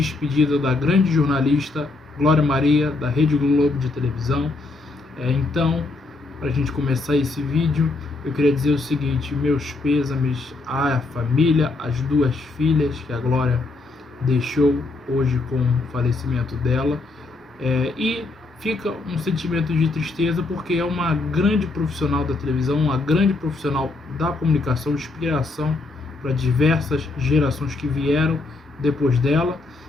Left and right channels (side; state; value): right; quieter; 3.4 dB